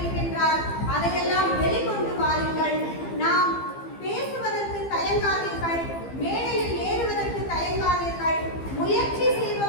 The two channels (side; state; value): right; late; 15 ms